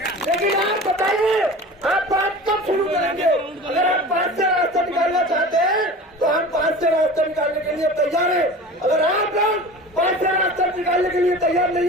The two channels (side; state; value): both; normal; correlation 0.36